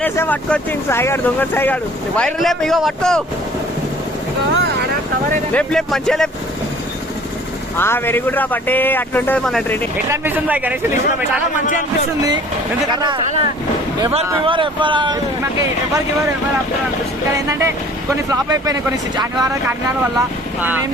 పట్టుకొచ్చింది సాయిగాడు, దొంగ సాయిగాడు. వైర్ లేపు, ఇగో పట్టుకో, లేపు లేపు మంచిగా లేపు. వెరీ గుడ్ రా బట్టే. అట్లుంటది మన ట్రైనింగ్. ఎట్లా అనిపిస్తుంది బాయ్ గణేష్? చాలా మంచిగా అనిపిస్తుంది. ఎందుకంటే ఎవరు అనిపిస్తుంది. కానీ ఏంటంటే కొన్ని ఫ్లాప్ అయిపోయినాయి, కొన్ని అనివార్య కారణాల వల్ల ఏం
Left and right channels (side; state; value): both; normal; correlation 0.51